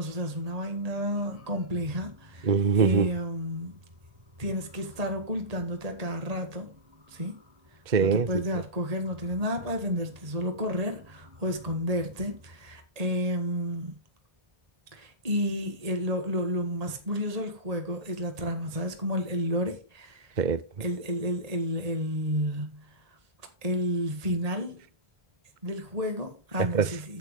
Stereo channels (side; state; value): left; late; 1.8 ms